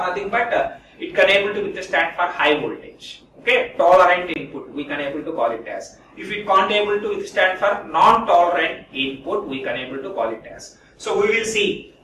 nothing but it can able to withstand for high voltage. Okay, tolerant input we can able to call it as. If it can't able to withstand for non-tolerant input, we can able to call it as. So we will see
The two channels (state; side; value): identical; both; correlation 1.00